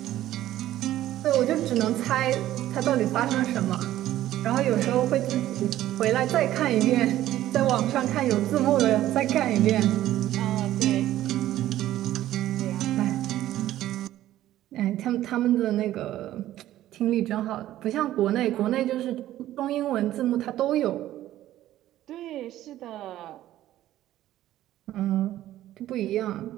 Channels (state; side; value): quieter; left; 13.7 dB